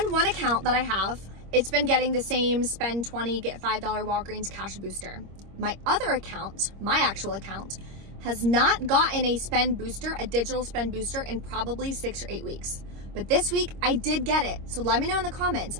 one account that I have, it's been getting the same spend 20, get $5 Walgreens cash booster. My other account, my actual account, has not gotten a spend booster, a digital spend booster, in probably 6 or 8 weeks. But this week I did get it. So let me know in the comments,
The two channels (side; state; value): left; late; 26 ms